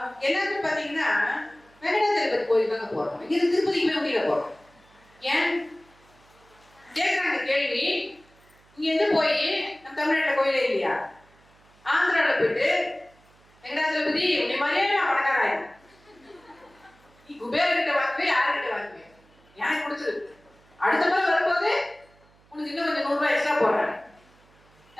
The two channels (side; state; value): right; noise; hum, 30 dB below the sound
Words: எல்லாருமே பாத்தீங்கன்னா வெங்கடாச்சலபதி கோயில் தாங்க போறோம். இங்க திருப்பதிக்கு போய் முடியல போறோம். ஏன் கேட்குறாங்க கேள்வி. இங்க போய் நம்ம தமிழ்நாட்டில் கோயிலே இல்லையா? ஆந்திராவில் போயிட்டு வெங்கடாச்சலபதி உன்னை மாதிரியே நான் பணக்காராயன், நீ குபேரகிட்ட வாங்குவே யாருக்கிட்ட வாங்குவேன், எனக்கு பிடிச்சது. அடுத்த முறை வரும்போது உனக்கு இன்னும் கொஞ்சம் 100 ரூபாய் எக்ஸ்ட்ரா போடுறேன்.